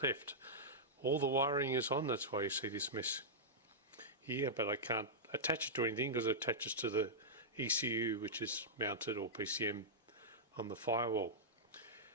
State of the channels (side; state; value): both; normal; correlation -0.10